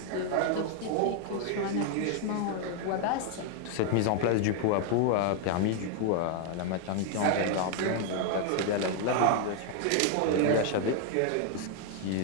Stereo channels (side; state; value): both; different; correlation 0.00